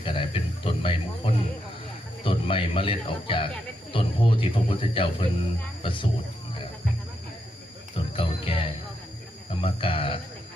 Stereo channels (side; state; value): both; normal; correlation 0.82